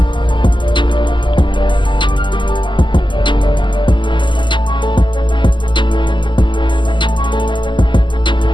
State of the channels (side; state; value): right; late; 0.23 ms